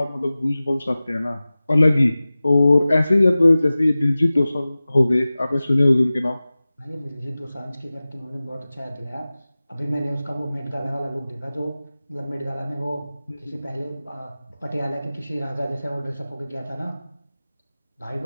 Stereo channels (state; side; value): inverted; both; correlation -0.97